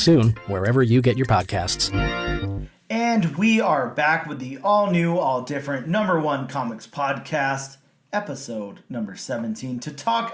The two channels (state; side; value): identical; both; correlation 1.00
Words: wherever you get your podcasts. And we are back with the all-new, all-different #1 Comics Podcast, episode number 17, to talk